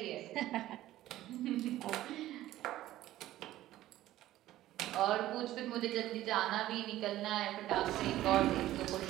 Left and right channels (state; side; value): quieter; left; 14.6 dB